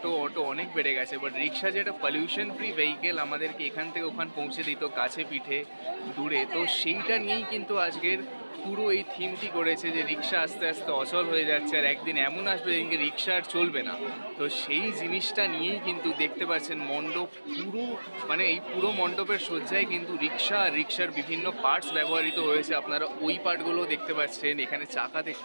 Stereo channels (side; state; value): both; inverted; correlation -1.00